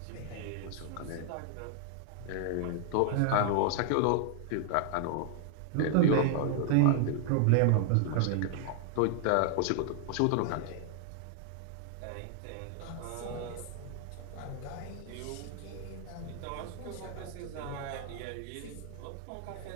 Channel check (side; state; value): both; different; correlation 0.00